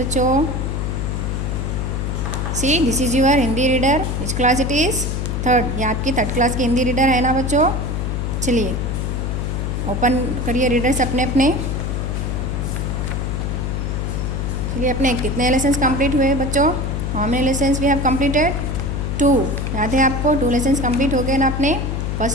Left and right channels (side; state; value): left; noise; hum, 1 dB below the sound